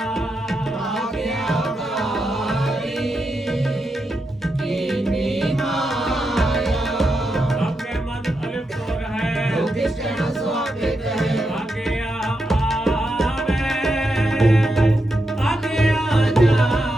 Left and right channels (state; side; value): normal; both; correlation 0.85